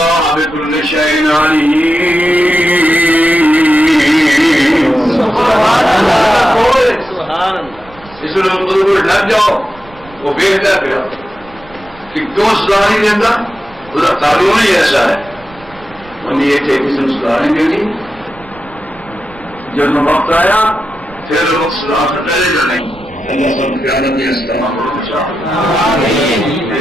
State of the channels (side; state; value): right; noise; rumble, 23 dB below the sound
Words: بکل شیء علیم. سبحان اللہ. اس لیے لگ جاؤ وہ بھیجتا پھر کہ کیوں صلاح نہیں دیتا اس کا قانون ہی ایسا ہے. انہیں یہ تھے کسی نے صلاح نہیں دینی. جب وقت آیا پھر وقت صلاح سے پہلے جو نہیں. اللہ سب قیادت میں استعمال